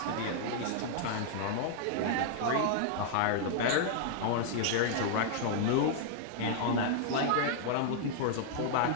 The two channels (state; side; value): different; both; correlation -0.01